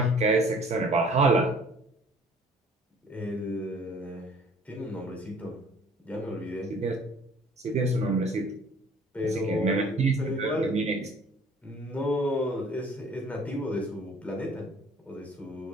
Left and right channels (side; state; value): both; normal; correlation 0.53